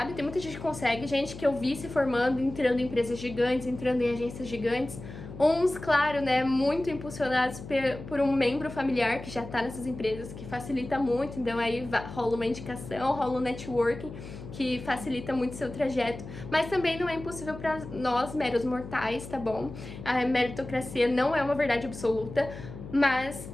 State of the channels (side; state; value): left; noise; hum, 12 dB below the sound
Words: Tem muita gente que consegue, gente que eu vi se formando, entrando em empresas gigantes, entrando em agências gigantes. Uns, claro, né, muito impulsionados por um membro familiar que já tá nessas empresas, que facilita muito, então aí rola uma indicação, rola um networking, que facilita muito seu trajeto, mas também não é impossível para nós, meros mortais, tá bom? A meritocracia não é uma verdade absoluta, mas